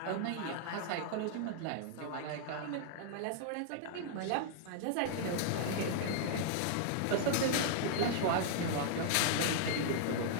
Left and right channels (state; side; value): different; both; correlation -0.01